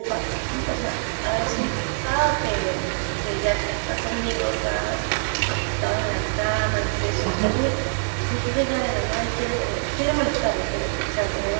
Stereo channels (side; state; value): left; silent; digital silence